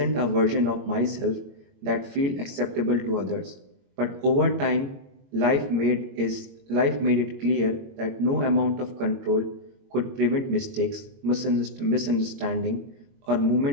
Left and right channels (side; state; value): left; late; 22 ms